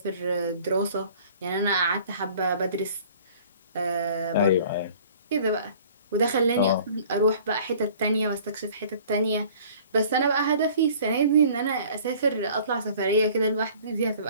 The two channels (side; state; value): both; inverted; correlation -0.50